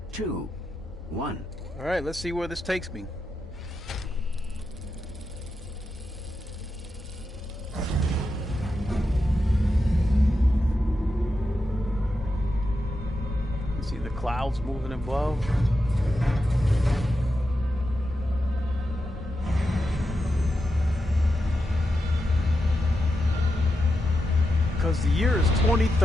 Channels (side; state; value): both; normal; correlation 0.88